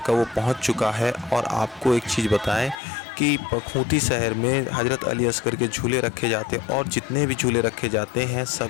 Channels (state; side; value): drops out; right; at 2.8 s